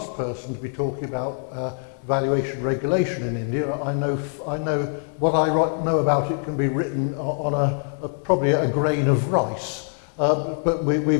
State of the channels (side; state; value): right; silent; 63 dB below the other